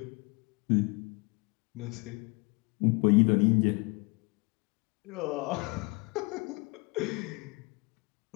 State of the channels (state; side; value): quieter; right; 28.6 dB